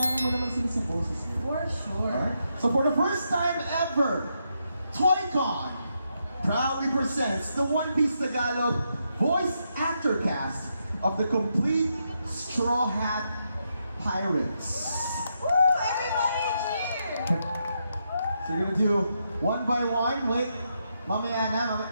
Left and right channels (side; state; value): both; inverted; correlation -0.82